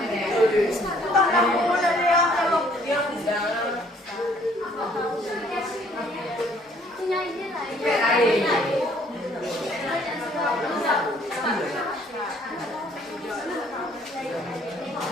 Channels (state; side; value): normal; both; correlation 0.61